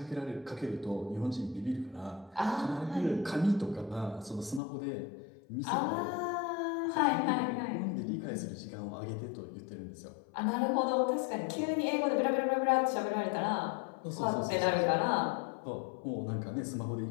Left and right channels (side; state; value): right; drops out; at 4.6 s